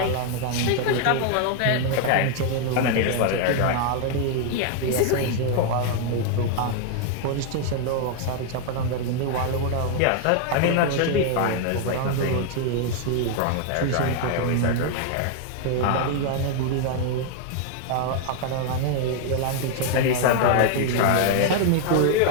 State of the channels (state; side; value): different; both; correlation 0.00